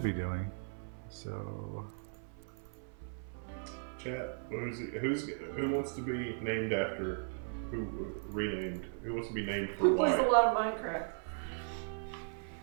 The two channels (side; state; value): left; silent; 53 dB below the other